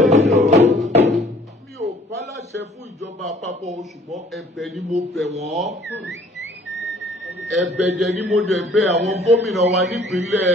Mi ò pálàṣẹ fún ìjọba àpapọ̀, ṣùgbọ́n ẹ̀bẹ̀ ni mo bẹ̀ wọ́n. Ẹ̀bẹ̀ jẹ́ ni mo dẹ̀ bẹ̀ àwọn gómìnà wa nípínlẹ̀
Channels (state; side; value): normal; both; correlation 0.56